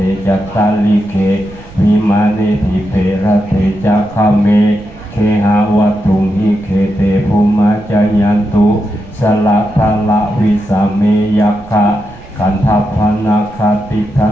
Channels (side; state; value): right; noise; rumble, 19 dB below the sound